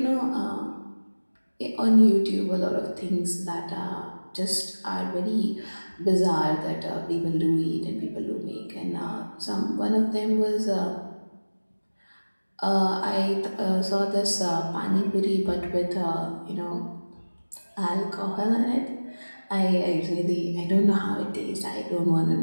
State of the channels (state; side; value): inverted; both; correlation -1.00